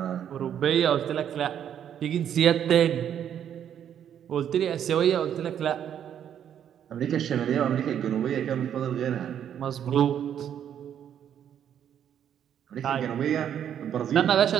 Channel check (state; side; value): quieter; left; 9.4 dB